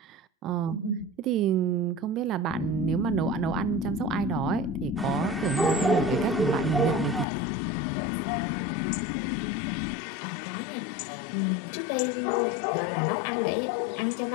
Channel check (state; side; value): drops out; right; at 7.2 s